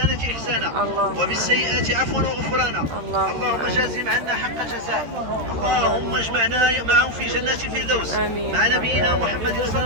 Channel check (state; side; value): late; left; 13 ms